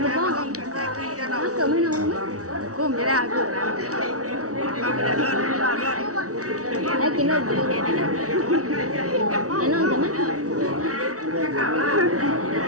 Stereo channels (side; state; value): left; late; 0.66 ms